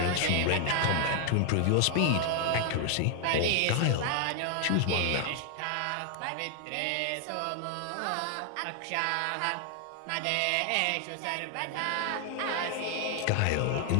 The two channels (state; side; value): different; both; correlation 0.00